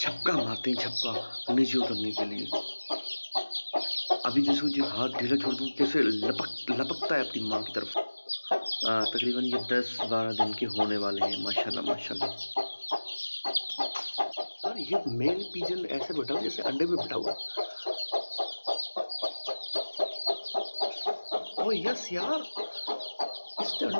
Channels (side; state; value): both; inverted; correlation -1.00